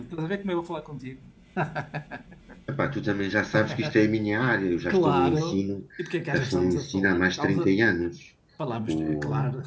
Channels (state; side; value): identical; both; correlation 1.00